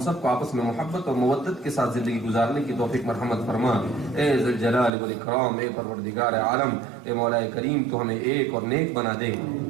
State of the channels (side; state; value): left; drops out; at 4.9 s